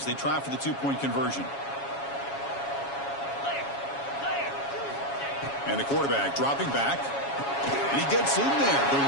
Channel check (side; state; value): right; late; 7.2 ms